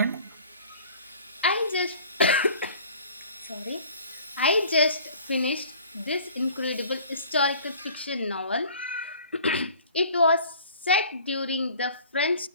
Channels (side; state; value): both; inverted; correlation -0.49